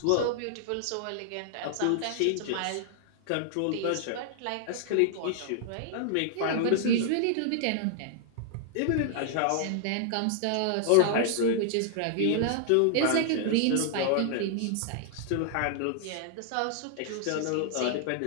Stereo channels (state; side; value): different; both; correlation -0.01